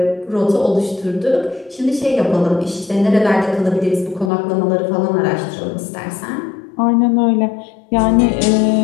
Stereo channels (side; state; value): right; drops out; at 4.3 s